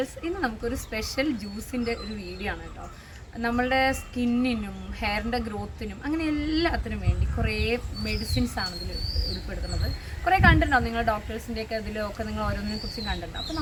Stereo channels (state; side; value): identical; both; correlation 1.00